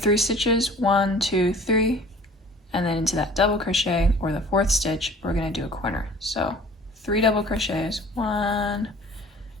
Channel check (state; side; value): normal; both; correlation 0.48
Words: stitches, 1, 2, 3, and then into that double crochet or the 4th stitch, we're gonna do a corner. So 3 double crochets, 1,